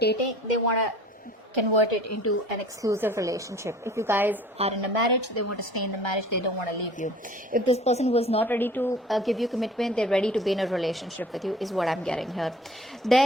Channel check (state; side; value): normal; both; correlation 0.48